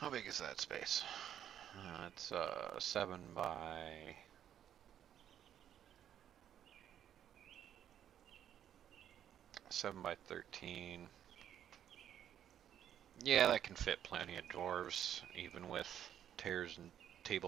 big is that space? It's 7 by 13. Yeah, that can fit plenty of dwarves, even with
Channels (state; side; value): quieter; left; 10.1 dB